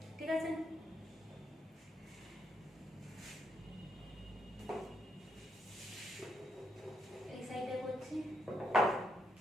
ঠিক আছে? এই সাইডে করছি,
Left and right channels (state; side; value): normal; both; correlation 0.78